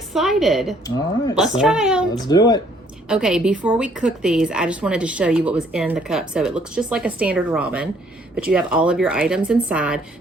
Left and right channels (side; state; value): both; normal; correlation 0.63